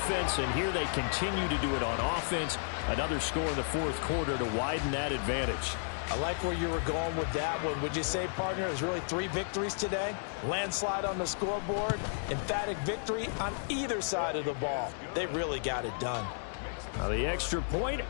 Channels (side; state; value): right; silent; digital silence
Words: and here they continue to do it on offense. Another score in the fourth quarter to widen that advantage. I like where you were going with that one. Would you say, partner, there's really 3 victories today? Landslide on the scoreboard, emphatic victory on either side of the ball. They really got it done. Now the extra point